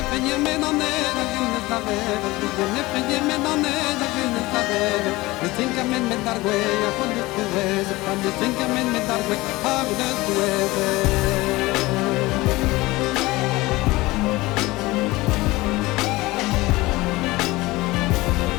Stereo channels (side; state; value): right; quieter; 20.4 dB